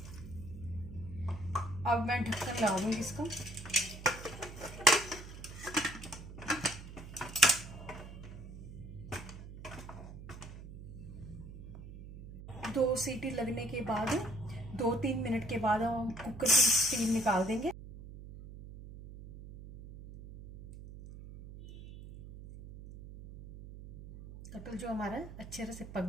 मैं ढक्कन लगा दूंगी इसका। दो सीटी लगने के बाद 2-3 मिनट के बाद हम कुकर की स्टीम निकाल देंगे। कटहल जो हमारा अच्छे तरह से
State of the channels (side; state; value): right; noise; hum, 13 dB below the sound